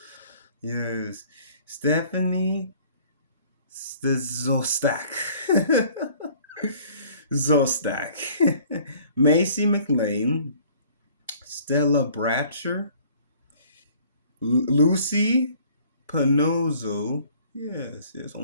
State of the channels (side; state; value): both; inverted; correlation -0.55